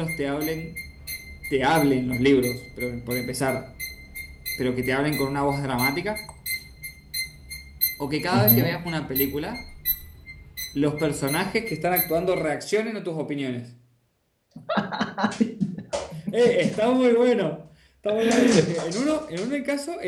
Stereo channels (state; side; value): identical; both; correlation 1.00